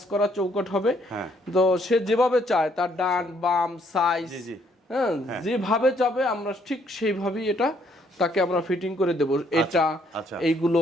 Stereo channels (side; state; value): both; normal; correlation 0.68